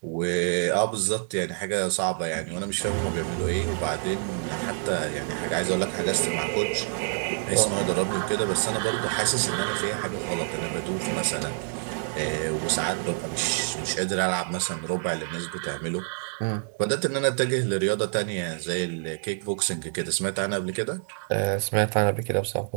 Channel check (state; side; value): silent; left; digital silence